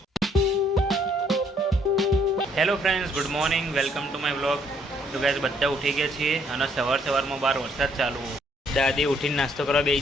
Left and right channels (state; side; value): normal; both; correlation 0.66